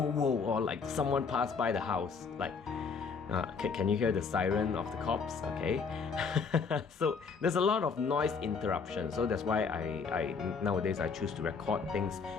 whoa, or like someone passed by the house. Like, can you hear the siren of the cops? Okay. So there's a lot of noise interruption. So that's why I nowadays I choose to record things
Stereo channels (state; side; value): quieter; right; 5.4 dB